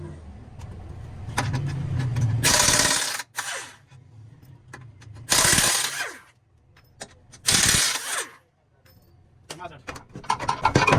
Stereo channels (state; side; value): identical; both; correlation 1.00